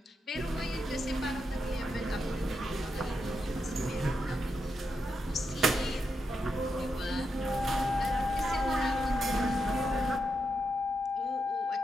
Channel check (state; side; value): normal; both; correlation 0.84